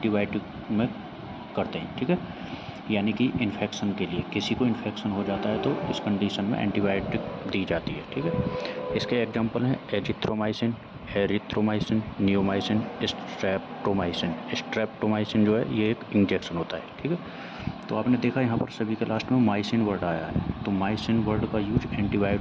में करते हैं, ठीक है, यानी कि इन्फेक्शन के लिए। किसी को इन्फेक्शन हो जाता है तो इस कंडीशन में एंटीबायोटिक दी जाती है, ठीक है। इसके एग्जांपल हैं azithromycin, erythromycin, neomycin, streptomycin. Streptomycin जो है ये एक इंजेक्शन होता है, ठीक है। तो आपने देखा यहाँ पर सभी के लास्ट में माइसिन वर्ड आया है, तो माइसिन वर्ड का यूज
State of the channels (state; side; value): identical; both; correlation 1.00